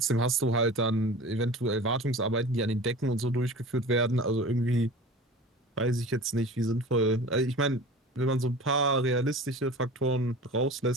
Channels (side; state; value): both; normal; correlation 0.38